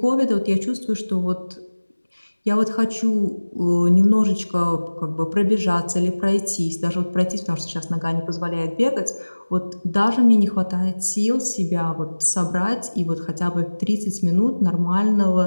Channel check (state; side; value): inverted; both; correlation -1.00